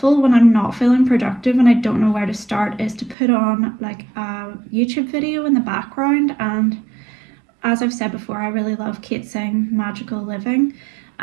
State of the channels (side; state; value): left; drops out; at 3.2 s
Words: when I'm not feeling productive and I don't know where to start is to put on like a YouTube video in the background. And as I've said before, I really love Kate Singh Magical Living,